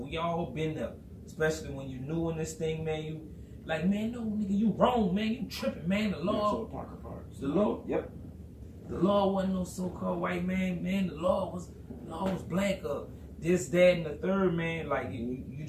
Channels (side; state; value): both; identical; correlation 1.00